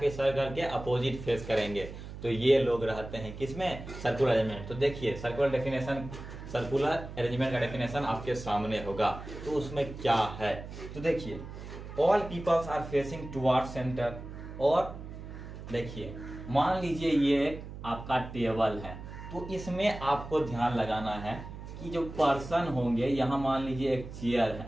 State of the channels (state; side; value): noise; right; hum, 11 dB below the sound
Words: सर्कल के अपोजिट फेस करेंगे। तो ये लोग रहते हैं किसमें, सर्कुलर अरेंजमेंट। तो देखिए सर्कुलर डेफिनेशन, सर्कुलर अरेंजमेंट का डेफिनेशन आपके सामने होगा। तो उसमें क्या है, तो देखिए all peoples are facing toward centre. और देखिए मान लीजिए ये आपका टेबल है, तो इसमें आपको ध्यान लगाना है कि जो पर्सन होंगे, यहां मान लीजिए एक चेयर